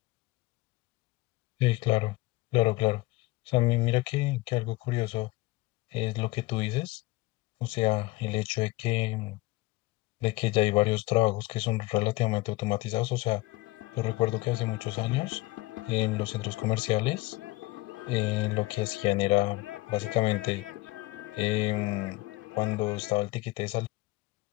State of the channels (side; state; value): right; quieter; 20.7 dB